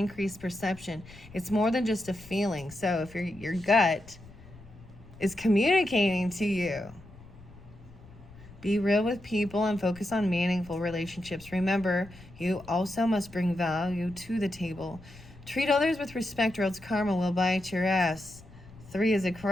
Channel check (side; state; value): left; noise; rumble, 20 dB below the sound